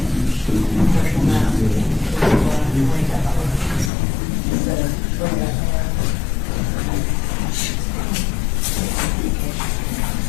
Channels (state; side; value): drops out; right; at 3.9 s